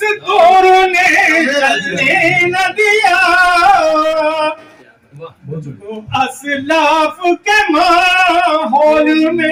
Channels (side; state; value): both; identical; correlation 1.00